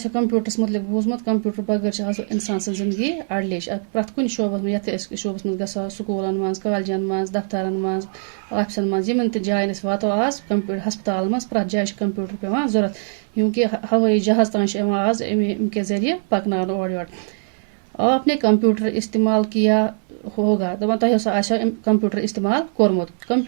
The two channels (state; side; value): silent; left; 62 dB below the other